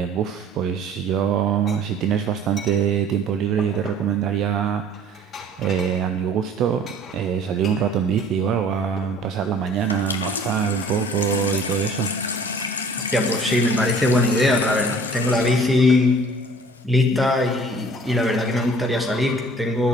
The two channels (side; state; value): both; normal; correlation 0.50